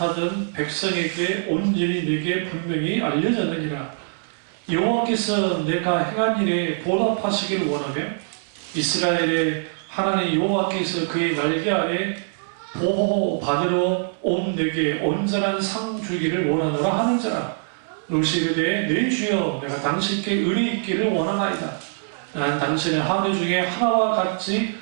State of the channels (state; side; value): silent; left; 63 dB below the other